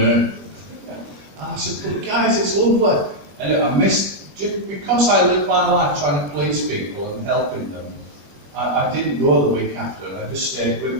And I said, "But guys, it's lovely." And I missed, because I lived my life trying to please people and helping them, I didn't go the week after, and I just stayed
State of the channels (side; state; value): left; late; 21 ms